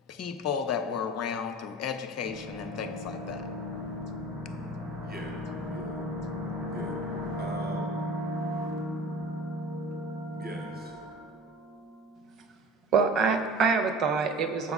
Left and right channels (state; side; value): normal; both; correlation 0.39